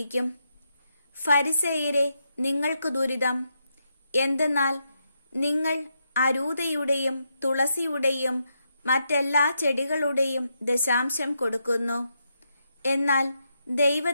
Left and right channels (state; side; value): inverted; both; correlation -0.81